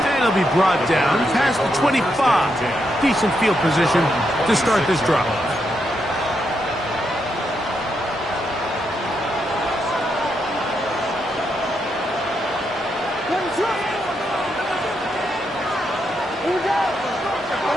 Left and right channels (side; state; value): both; normal; correlation 0.81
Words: he'll be brought down past the 25. Decent field position to start this drive.